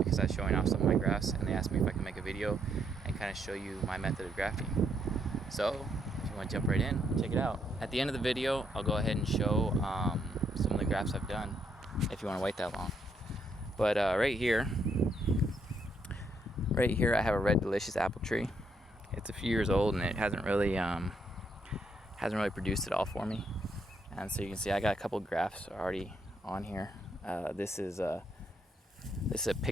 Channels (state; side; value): normal; both; correlation 0.74